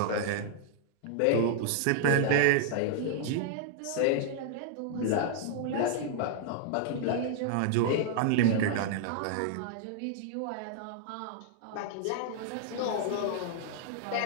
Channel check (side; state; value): both; different; correlation -0.01